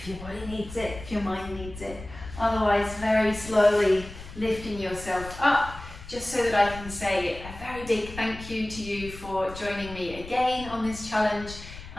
your body needs it, if your mind needs it. Otherwise, very slowly lifting yourself up, just so that I can say a very big thank you to you for joining me again on this challenge.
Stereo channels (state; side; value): noise; left; rumble, 14 dB below the sound